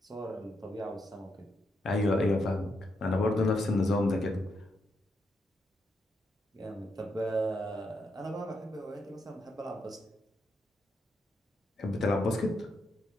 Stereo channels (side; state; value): both; normal; correlation 0.81